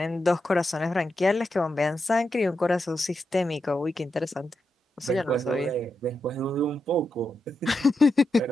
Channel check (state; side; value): normal; both; correlation 0.86